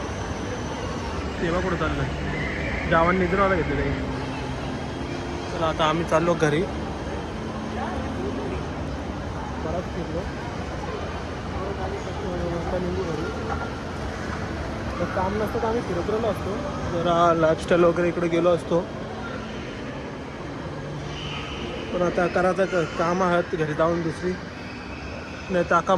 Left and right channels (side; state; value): both; identical; correlation 1.00